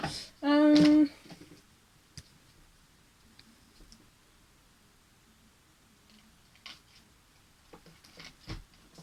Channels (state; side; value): identical; both; correlation 1.00